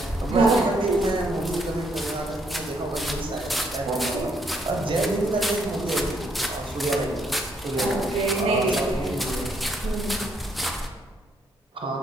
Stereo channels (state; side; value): normal; both; correlation 0.72